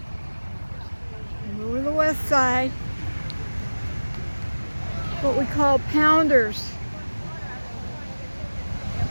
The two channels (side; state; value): both; inverted; correlation -1.00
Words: Go to the west side. What we call pounders.